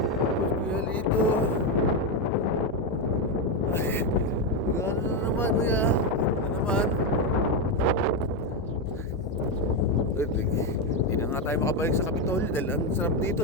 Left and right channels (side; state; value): both; normal; correlation 0.08